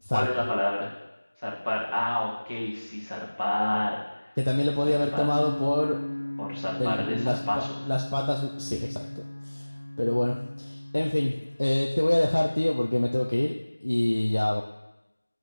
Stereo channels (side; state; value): both; inverted; correlation -1.00